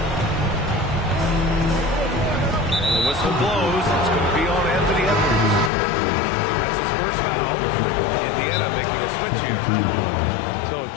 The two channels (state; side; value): drops out; right; at 5.7 s